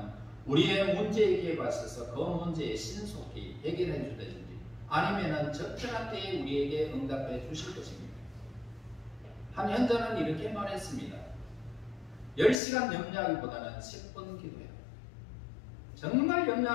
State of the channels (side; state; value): right; drops out; at 12.6 s